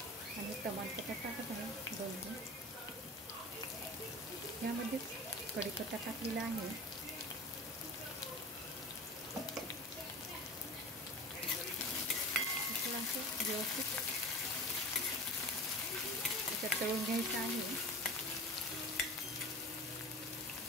आणि तमालपत्ता टाकत आहे 2 यामध्ये कढीपत्ता टाकलेला आहे. असं व्यवस्थित त्याच्यात तळून घ्यायचं आहे.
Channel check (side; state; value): both; normal; correlation 0.36